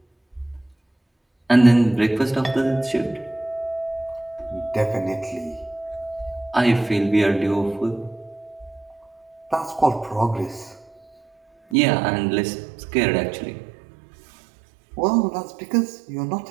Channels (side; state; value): left; drops out; at 11.8 s